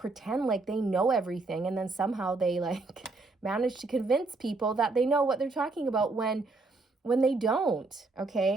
like they know everything. And then somehow they like manage to convince people that they know what they're talking about when they don't,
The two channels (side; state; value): left; quieter; 3.5 dB